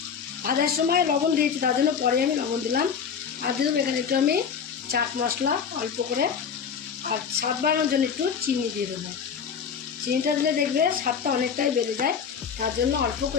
ভাজার সময় লবণ দিয়েছি, তার জন্য পরে আমি লবণ দিলাম। আর দিয়ে দেবো এখানে একটু আমি চাট মশলা অল্প করে, আর স্বাদ বাড়ানোর জন্য একটু চিনি দিয়ে দেবো। চিনিটা দিলে দেখবে স্বাদটা অনেকটাই বেড়ে যায়, তার জন্য অল্প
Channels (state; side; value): quieter; right; 6.9 dB